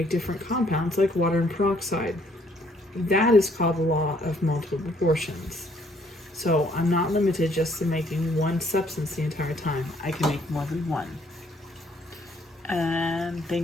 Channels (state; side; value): normal; both; correlation 0.66